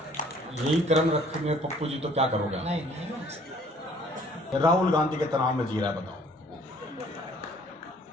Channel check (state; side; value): normal; both; correlation 0.57